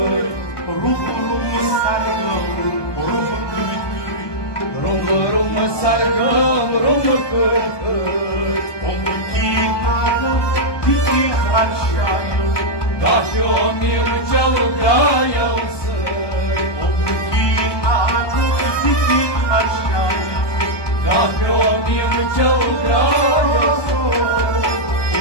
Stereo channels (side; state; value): right; late; 1.2 ms